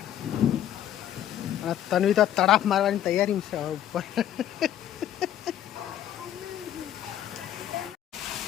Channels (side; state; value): right; quieter; 11.2 dB